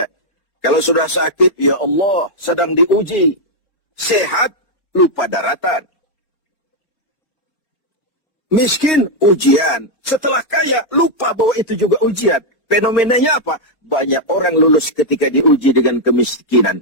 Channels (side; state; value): right; late; 4.3 ms